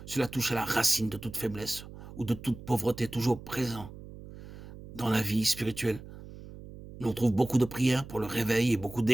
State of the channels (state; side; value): noise; right; hum, 15 dB below the sound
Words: Cela touche à la racine de toute faiblesse ou de toute pauvreté toujours présent dans la vie spirituelle. On trouve beaucoup de prières pour le réveil et beaucoup